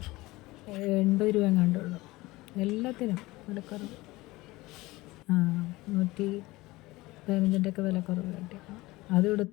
രൂപ എങ്ങാണ്ടുള്ളൂ. എല്ലാത്തിനും വിലക്കുറവ്. 115-ഒക്കെ വിലക്കുറവ് കിട്ടിയപ്പോൾ അതും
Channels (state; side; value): quieter; right; 20.1 dB